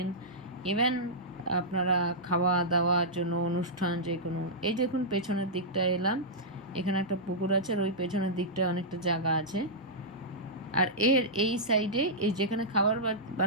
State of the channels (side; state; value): both; normal; correlation -0.12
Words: ইভেন আপনারা খাওয়া দাওয়ার জন্য অনুষ্ঠান যে কোনো। এই দেখুন পেছনের দিকটা এলাম, এখানে একটা পুকুর আছে, আর ওই পেছনের দিকটায় অনেকটা জায়গা আছে। আর এই সাইডে, এই যেখানে খাবার